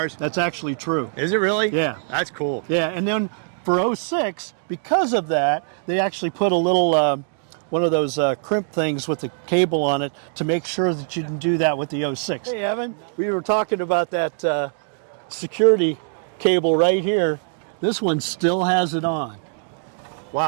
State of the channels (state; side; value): silent; left; digital silence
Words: That's actually true. Is it really? Yeah. That's cool. Yeah, and then for 06, because of that, they actually put a little, one of those crimp things with the cable on it to make sure that you didn't do that with the 06. Hey, Evan, we were talking about that security cable right here. This one still has it on.